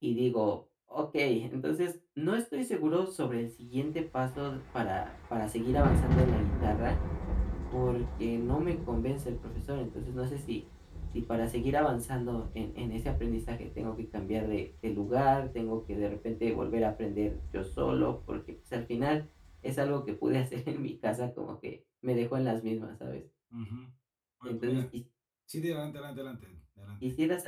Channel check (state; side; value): identical; both; correlation 1.00